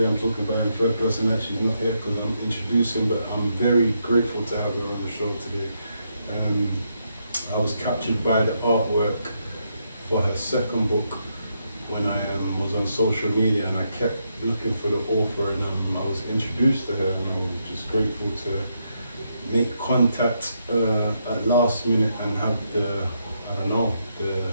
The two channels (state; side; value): inverted; both; correlation -0.79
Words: I'm talking about her in third person, and she's not here because I'm introducing, but I'm very grateful to have her on the show today. I was captured by the artwork for her second book when I was on social media, and I kept looking for the author, and I was introduced to her, and I was just grateful to make contact at last minute and have the I don't know